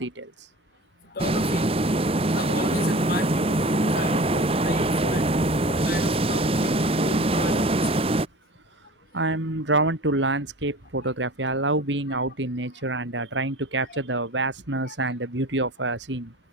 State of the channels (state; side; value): normal; both; correlation 0.37